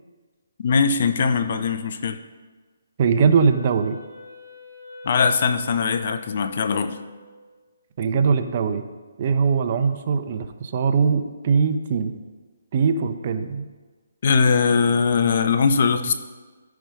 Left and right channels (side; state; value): both; inverted; correlation -0.71